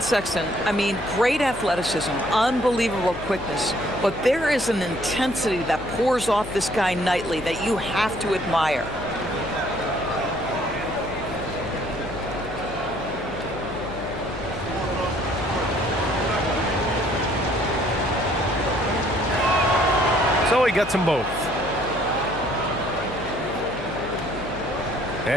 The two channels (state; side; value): noise; left; hum, 13 dB below the sound